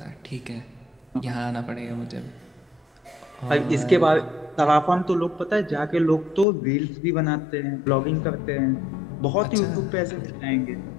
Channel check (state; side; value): drops out; right; at 6.5 s